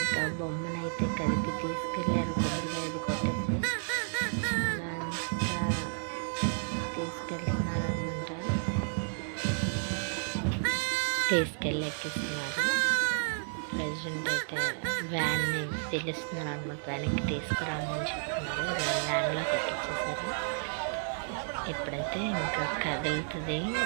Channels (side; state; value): left; silent; digital silence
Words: బొమ్మనైతే కదిపి తీసుకెళ్ళారు, కొబ్బరికాయ అది కొట్టేసి అలా అంతా తీసుకెళ్తున్నారు అనమాట. తీసుకెళ్ళి ఎక్కిస్తున్నారు. ప్రెసిడెంట్ అయితే వ్యాన్ని పిలుస్తున్నారు అనమాట, వ్యాన్కి తీసుకురామని చెప్తున్నారు. వ్యాన్లోకి ఎక్కించేసారు. ఇప్పుడైతే ఇంకా కదులుతుంది.